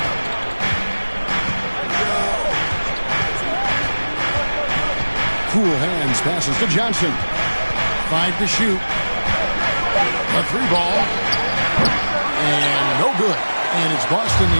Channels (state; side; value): inverted; both; correlation -1.00